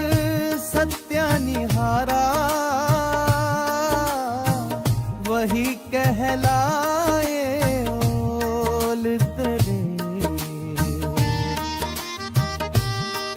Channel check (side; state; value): both; identical; correlation 1.00